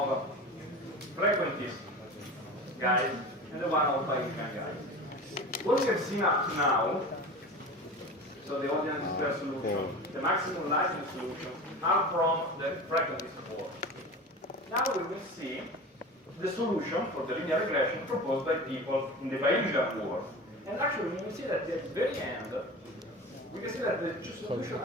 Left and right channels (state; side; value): normal; both; correlation 0.33